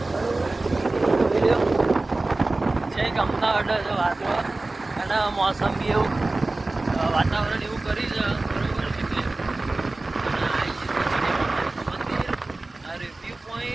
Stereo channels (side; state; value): left; quieter; 3.1 dB